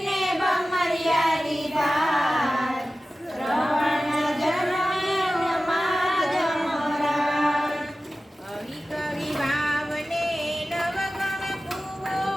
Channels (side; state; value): both; normal; correlation 0.95